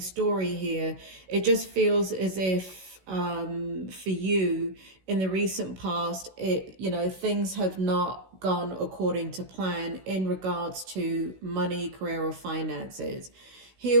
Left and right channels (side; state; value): left; late; 16 ms